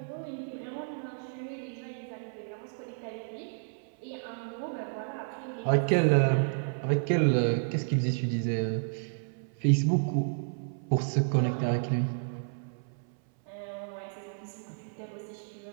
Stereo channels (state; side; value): silent; left; 57 dB below the other